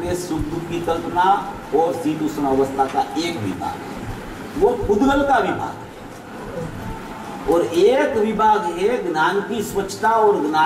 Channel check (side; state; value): both; identical; correlation 1.00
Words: सुख दुख की कल्पना और शीतोष्ण अवस्था का एक विभाग है, वो पुद्गल का विभाग है, और एक विभाग है ज्ञान की स्वच्छता और